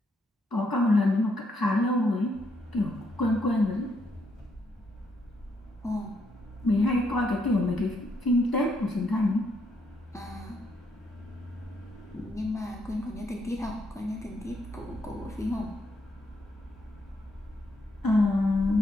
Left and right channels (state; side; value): normal; both; correlation 0.75